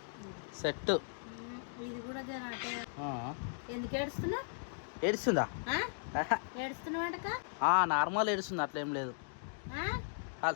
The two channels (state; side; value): silent; right; digital silence